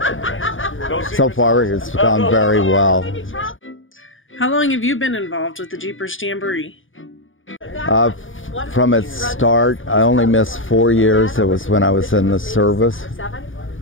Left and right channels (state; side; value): late; right; 0.58 ms